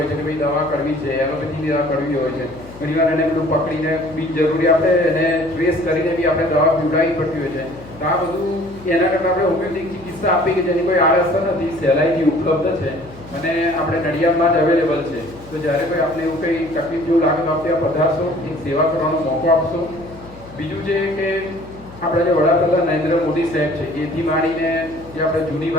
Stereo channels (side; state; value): left; noise; hum, 19 dB below the sound